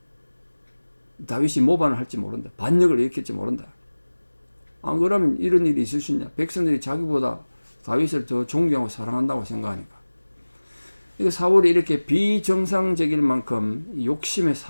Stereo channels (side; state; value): both; inverted; correlation -1.00